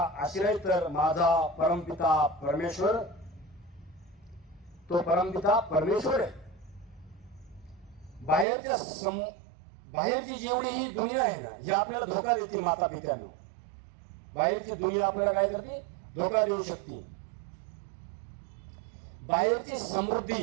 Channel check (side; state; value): left; drops out; at 8.5 s